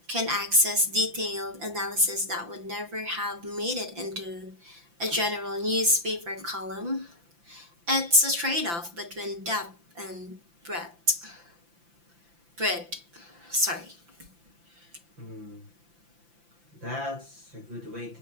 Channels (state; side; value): late; left; 5.9 ms